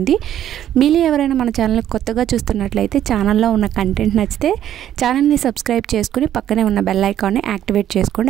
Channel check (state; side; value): quieter; left; 11.2 dB